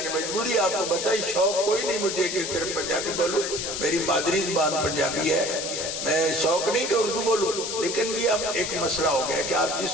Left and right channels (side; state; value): left; noise; hiss, 4 dB below the sound